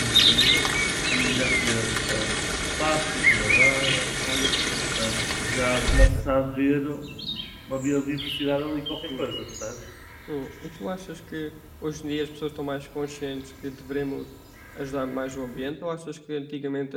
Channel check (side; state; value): both; identical; correlation 1.00